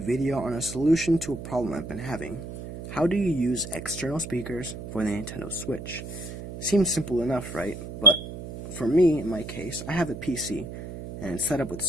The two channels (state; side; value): noise; right; hum, 10 dB below the sound